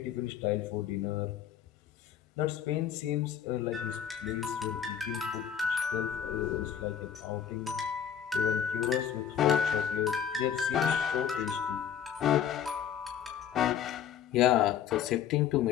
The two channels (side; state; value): right; quieter; 8.7 dB